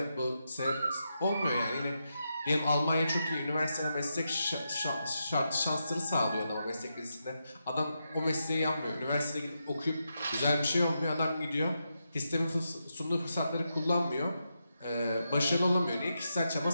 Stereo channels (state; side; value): inverted; both; correlation -0.85